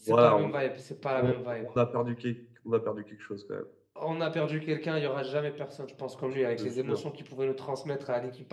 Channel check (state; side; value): identical; both; correlation 1.00